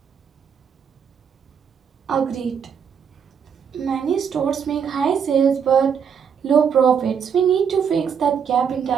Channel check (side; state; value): left; quieter; 7.2 dB